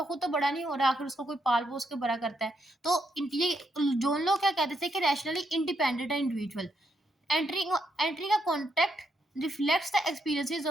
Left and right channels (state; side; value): normal; both; correlation 0.78